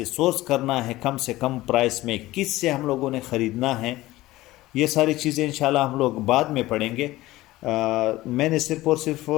سورس کرنا ہے, کم سے کم پرائس میں کس سے ہم لوگوں نے خریدنا ہے, یہ ساری چیزیں انشاءاللہ ہم لوگ بعد میں پڑھیں گے. میں نے صرف اور صرف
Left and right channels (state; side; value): quieter; right; 17.6 dB